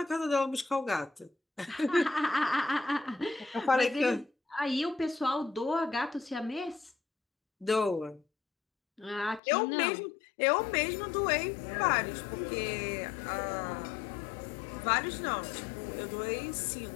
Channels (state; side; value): drops out; right; at 9.4 s